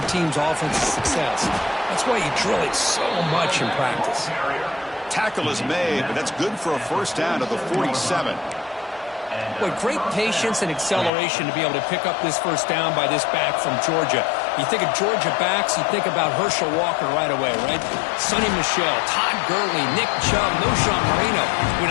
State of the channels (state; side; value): drops out; right; at 11.1 s